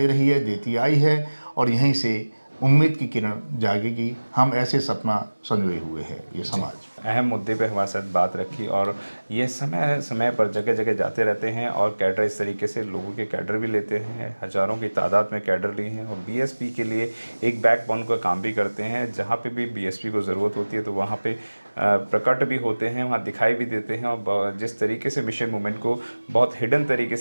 रही है, देती आई है और यहीं से उम्मीद की किरण जागेगी। हम ऐसे सपना संजोए हुए हैं ये समाज। अहम मुद्दे पे हमारे साथ बात रखी और ये समय समय पर जगह जगह जाते रहते हैं और कैडर इस तरीके से लोगों के कैडर भी लेते हैं, हज़ारों की तादाद में कैडर लिए हैं और बीएसपी के लिए एक बैकबोन का काम भी करते हैं। जहाँ पे भी बीएसपी को ज़रूरत होती है तो वहाँ पे प्रकट भी होते हैं, वहाँ दिखाई भी देते हैं और जिस तरीके से मिशन मूवमेंट को बहुत हिडन तरीके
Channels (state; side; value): inverted; both; correlation -1.00